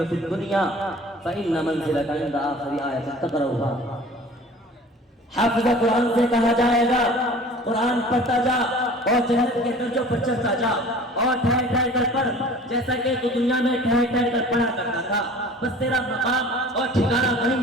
في الدنيا فإن منزلك عند آخر آية تقرأها۔ حافظ قرآن سے کہا جائے گا قرآن پڑھتا جا اور جنت کے درجوں پر چڑھتا جا، اور ٹھہر ٹھہر کر پڑھ جیسا کہ تو دنیا میں ٹھہر ٹھہر کر پڑھا کرتا تھا۔ بس تیرا مقام اور ٹھکانہ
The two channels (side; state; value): both; normal; correlation 0.45